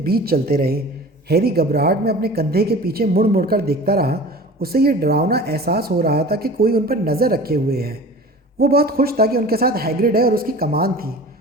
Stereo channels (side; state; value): both; normal; correlation 0.40